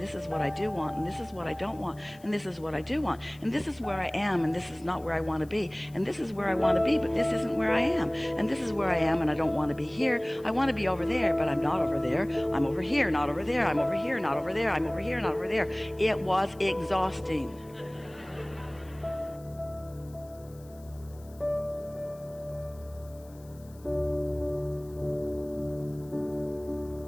this is what I do want, and this is what I don't want, and this is what I do want, and this is where I am, and this is not where I want to be, and this is where I want to be, but this isn't where I am, and this is where I am, and I don't want to be here. I want to be over there, but I'm not over there. I'm over here, not over there. I'm over here, not over there. I'm over here, not over there. It was exhausting.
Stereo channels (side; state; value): left; noise; hiss, 26 dB below the sound